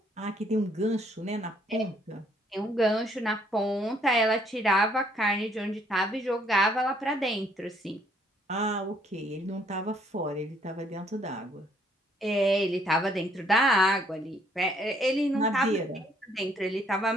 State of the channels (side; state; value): both; normal; correlation 0.66